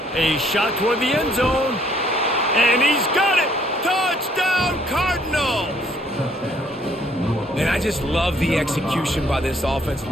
A shot toward the end zone. And he's got it! Touchdown, Cardinals! And I just love the execution by this offense.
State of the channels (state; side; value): normal; both; correlation 0.64